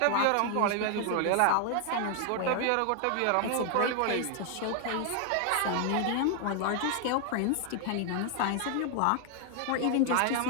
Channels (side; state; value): both; different; correlation 0.00